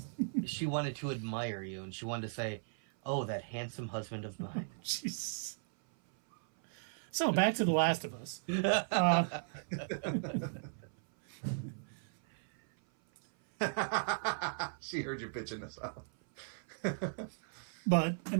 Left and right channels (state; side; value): silent; left; 53 dB below the other